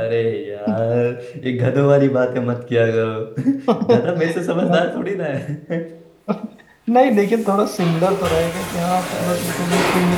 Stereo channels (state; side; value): identical; both; correlation 1.00